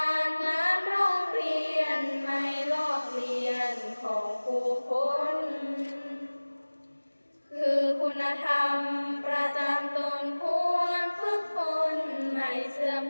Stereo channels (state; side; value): inverted; both; correlation -1.00